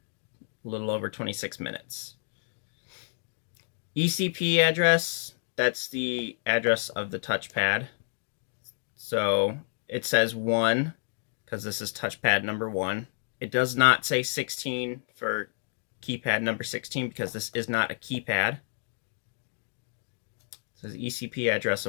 a little over 26 minutes. ECP address, that's the address of the touchpad. So it says 1, because this is touchpad number 1. It does not say 16 for keypad number 16, because this is not a keypad. It says ECP address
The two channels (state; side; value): silent; right; digital silence